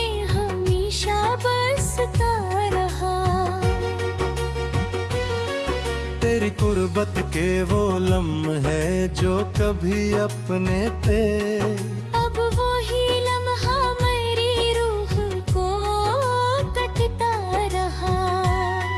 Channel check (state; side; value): identical; both; correlation 1.00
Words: हमेशा बसता रहा। तेरी कुर्बत के वो लम्हे जो कभी अपने थे, अब वो ही लम्हा मेरी रूह को कटता रहा।